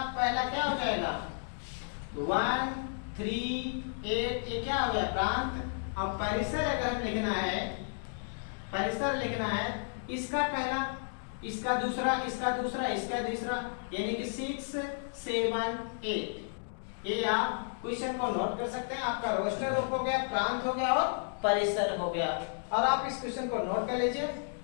पहला क्या हो जाएगा, 1 3 8, ये क्या हो गया प्रांत। अब परिसर अगर हम लिखना है, परिसर लिखना है, इसका पहला, इसका दूसरा, इसका दूसरा, इसका तीसरा, यानी कि 6 7 8। ये आप क्वेश्चन को नोट कर सकते हैं। आपका रोस्टर रूप हो गया, प्रांत हो गया और परिसर हो गया। और आप इस क्वेश्चन को नोट कर लीजिए,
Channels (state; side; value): silent; right; digital silence